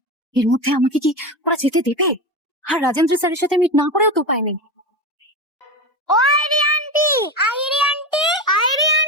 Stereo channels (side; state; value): both; normal; correlation 0.21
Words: এর মধ্যে আমাকে কি ওরা যেতে দেবে? আর রাজেন্দ্র স্যারের সাথে মিট না করেও তো উপায় নেই। ও আইরি আন্টি, আইরি আন্টি, আইরি